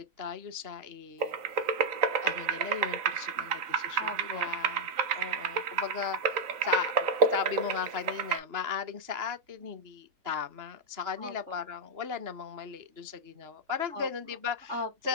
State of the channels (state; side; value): late; left; 3.9 ms